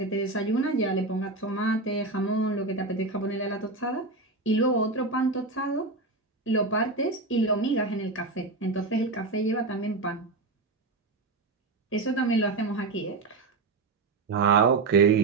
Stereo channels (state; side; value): quieter; left; 3.5 dB